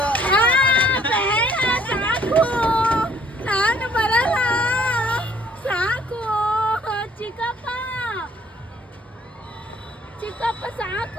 ಸಾಕು, ನಾನು ಬರಲ್ಲ, ಸಾಕು ಚಿಕ್ಕಪ್ಪ ಚಿಕ್ಕಪ್ಪ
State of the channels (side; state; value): both; normal; correlation 0.61